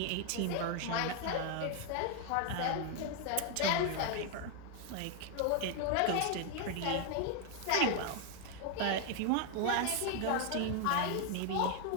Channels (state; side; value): different; both; correlation 0.01